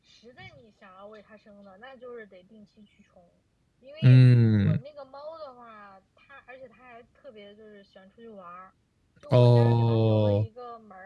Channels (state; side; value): identical; both; correlation 1.00